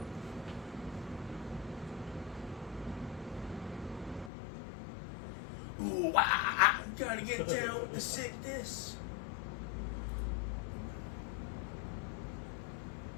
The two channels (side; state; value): right; drops out; at 4.3 s